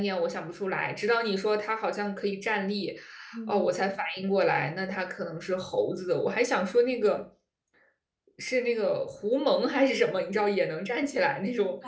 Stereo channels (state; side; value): identical; both; correlation 1.00